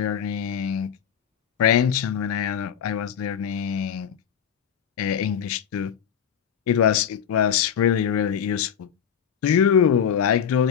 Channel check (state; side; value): quieter; right; 8.2 dB